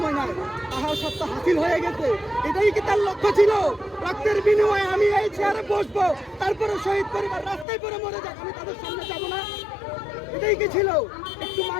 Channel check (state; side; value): drops out; right; at 7.7 s